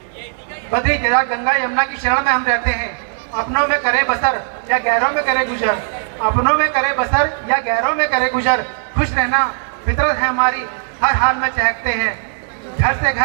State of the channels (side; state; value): left; silent; 61 dB below the other